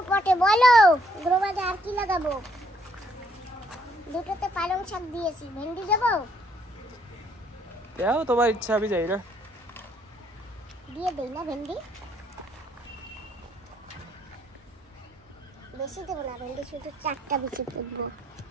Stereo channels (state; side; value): normal; both; correlation 0.68